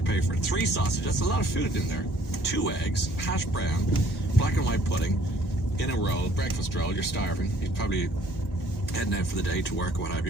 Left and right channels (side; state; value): both; normal; correlation 0.59